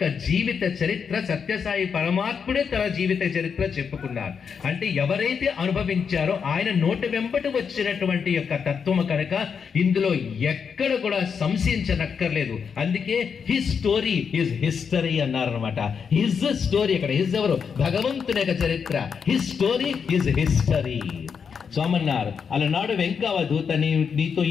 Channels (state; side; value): quieter; right; 6.4 dB